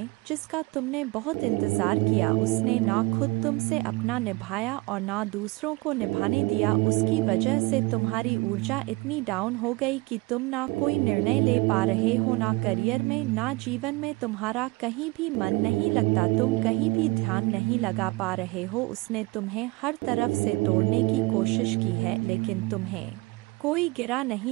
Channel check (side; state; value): left; quieter; 23.2 dB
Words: जिसका तुमने बहुत इंतजार किया। उसने ना खुद तुमसे अपना निभाया और ना दूसरों को निभाने दिया। उसकी वजह से तुम्हारी ऊर्जा इतनी डाउन हो गई कि तुम ना कोई निर्णय ले पा रहे हो, ना करियर में, ना जीवन में। तुम्हारा कहीं भी मन नहीं लगता, तुम कहीं भी ध्यान नहीं लगा पा रहे हो। उसने तुम्हें हर तरफ से तोड़ने की कोशिश की है, लेकिन तुम्हें कोई गिरा